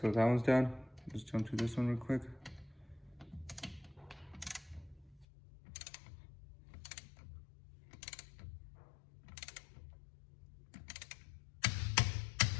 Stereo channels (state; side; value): drops out; right; at 5.2 s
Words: that one's done. Just jump to this one real quick.